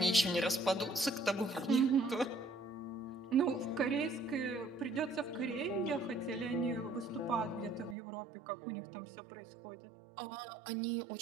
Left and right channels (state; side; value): drops out; left; at 8.0 s